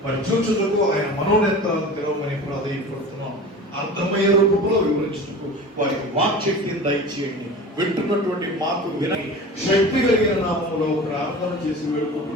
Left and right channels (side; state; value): both; normal; correlation 0.36